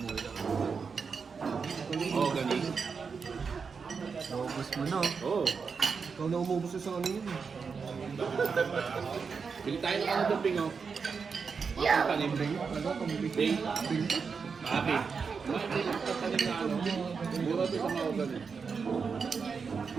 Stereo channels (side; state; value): left; quieter; 5.5 dB